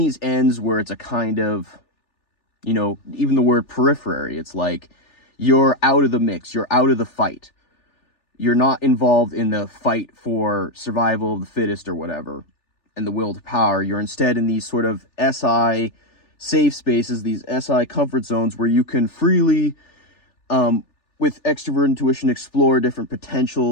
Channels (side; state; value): right; late; 3.4 ms